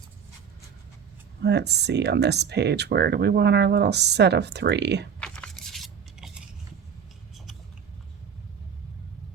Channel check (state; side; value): quieter; left; 7.2 dB